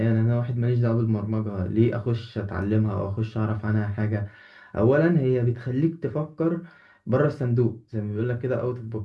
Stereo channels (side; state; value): both; identical; correlation 1.00